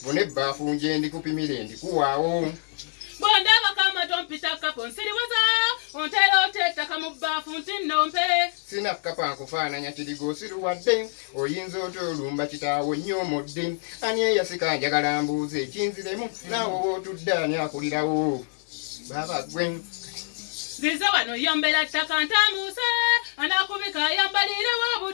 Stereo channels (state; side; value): silent; right; digital silence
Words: bone ebbaafu nje ndikupimire ndikuwaawo. Bondaba kama tompita kapo nsiriwaza ontera otettaka mu bbaafu nti nnompe. Sina kapa nkufaananya kirigo osiruwadde oyinza otolumba kitaawo nnyomodde ani eyasika njagala mbuuze ekinziremu naawe wootudde ani akulirawo. Baba gwe Zize wano yombera ttaka ntamuuse anakubika yambalirewo